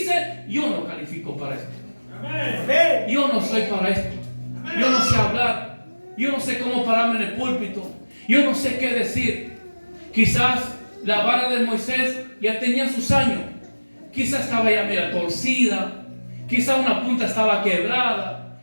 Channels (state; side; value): inverted; both; correlation -1.00